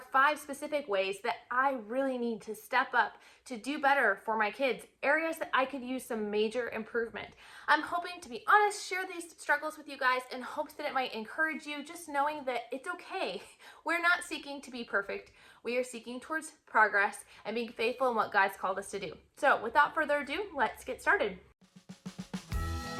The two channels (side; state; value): both; identical; correlation 1.00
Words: 5 specific ways that I really need to step up to do better for my kids, areas that I could use some major improvement. I'm hoping, to be honest, share these struggles with you guys in hopes that it might encourage you, just knowing that it's okay. We're not seeking to be perfect. We are seeking towards progress and being faithful in what God's called us to do. So without further ado, let's get started.